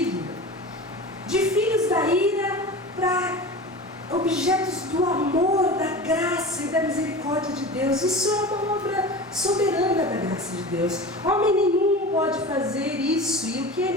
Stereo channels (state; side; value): normal; both; correlation 0.32